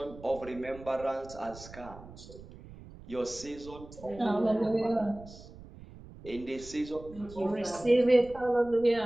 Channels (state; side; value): noise; right; rumble, 17 dB below the sound